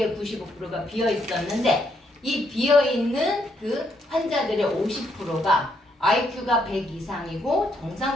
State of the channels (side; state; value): both; normal; correlation 0.74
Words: 95%가 비어 있었는데 이 비어 있는 그 환자들의 50%가 IQ가 100 이상이고